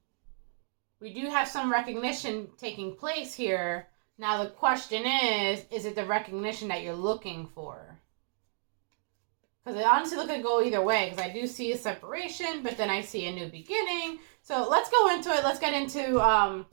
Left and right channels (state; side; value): silent; left; digital silence